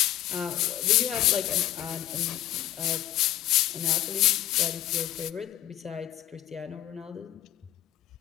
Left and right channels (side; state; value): right; quieter; 12.9 dB